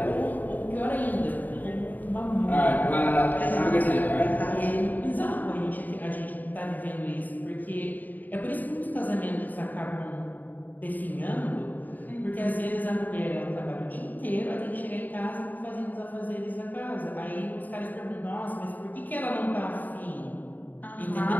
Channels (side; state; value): right; late; 0.085 ms